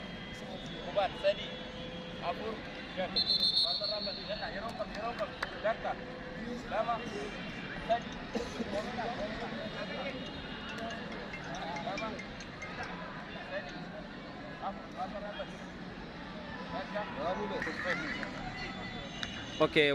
kubaan sadi afur shan barbarraa badii jedha yeroo kam takka lama sadi lama sadi afur barbarraa badii Oke,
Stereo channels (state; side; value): identical; both; correlation 1.00